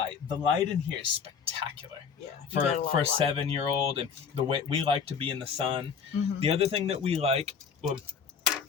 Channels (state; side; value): quieter; right; 6.5 dB